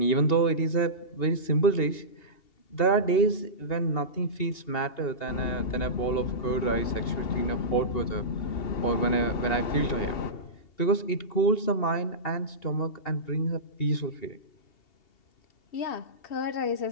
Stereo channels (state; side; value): late; right; 2.8 ms